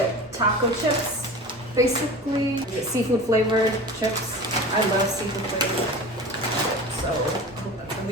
taco chips, basically seafood flavored chips. I love seafood flavored chips, so I hope that's gonna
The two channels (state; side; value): normal; both; correlation 0.34